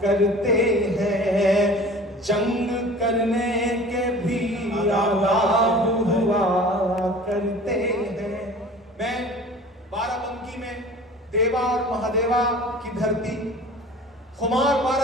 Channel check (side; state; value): both; normal; correlation 0.42